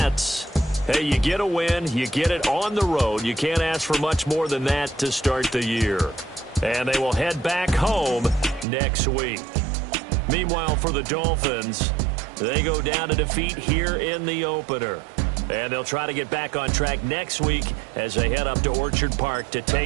hey, you get a win, you get it on the road. You can't ask for much more than that to start the year. And they will head back home next week. Meanwhile, for the Dolphins, they go down to defeat here in the opener. And they'll try to get back on track next week as they head up to Orchard Park to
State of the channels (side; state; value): left; drops out; at 8.7 s